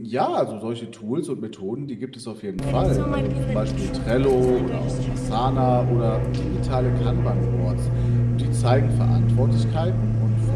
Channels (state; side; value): identical; both; correlation 1.00